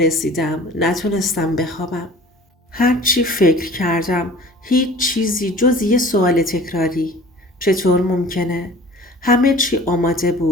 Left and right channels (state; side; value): normal; both; correlation 0.45